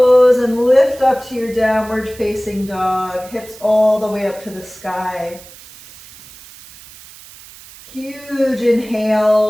and lift up to your downward facing dog. Hips all the way up to the sky. Huge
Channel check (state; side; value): noise; right; hiss, 20 dB below the sound